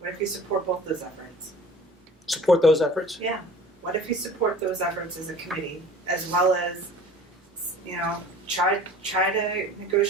if you support both those efforts? Support those efforts? Yeah. What if you support those efforts as a committee, as well as, try to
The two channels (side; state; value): both; normal; correlation 0.45